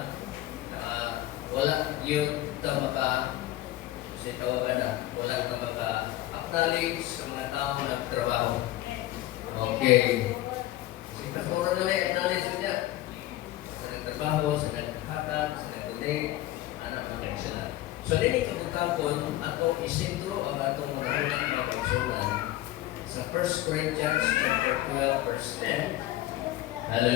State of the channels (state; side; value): quieter; right; 15.3 dB